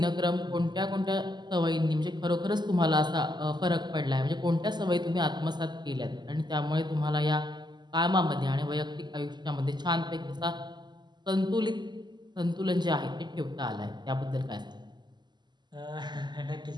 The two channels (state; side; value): late; left; 0.21 ms